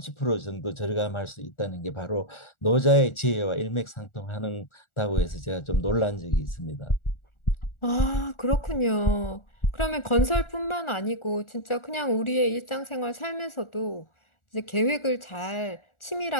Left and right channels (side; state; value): right; late; 1.4 ms